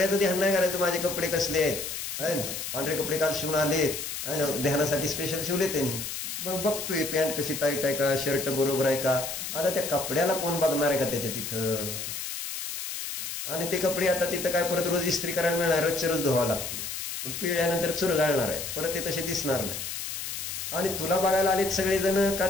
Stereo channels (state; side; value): noise; left; hiss, 5 dB below the sound